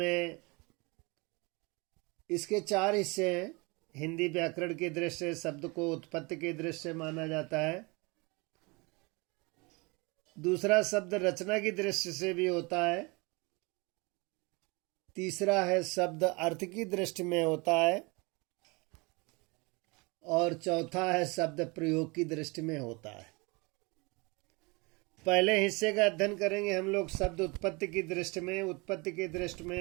इसके 4 हिस्से हैं। हिंदी व्याकरण की दृष्टि से शब्द को उत्पत्ति की दृष्टि से माना जाता है। दूसरा शब्द रचना की दृष्टि से भी होता है। तीसरा है शब्द अर्थ की दृष्टि में होता है। और चौथा है शब्द प्रयोग की दृष्टि में होता है। पहले हिस्से का अध्ययन करेंगे हम लोग शब्द उत्पत्ति की दृष्टि में। उत्पत्ति की दृष्टि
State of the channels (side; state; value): left; quieter; 27.2 dB